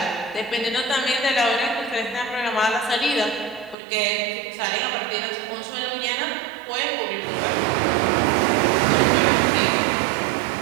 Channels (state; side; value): drops out; left; at 3.8 s